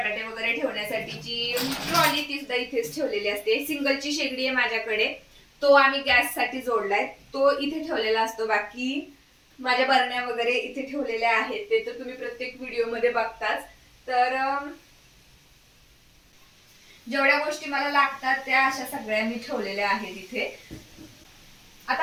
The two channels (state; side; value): identical; both; correlation 1.00